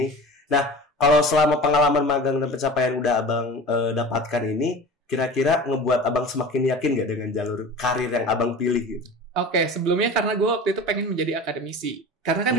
Nah, kalau selama pengalaman magang dan pencapaian udah Abang dapatkan ini, kira-kira ngebuat Abang semakin yakin gak dengan jalur karir yang Abang pilih gitu? Oke, sebelumnya karena gue waktu itu pengen menjadi akademisi. Karena kan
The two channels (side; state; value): both; normal; correlation 0.36